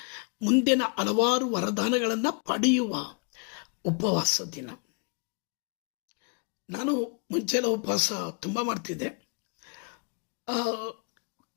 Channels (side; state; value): right; quieter; 35.6 dB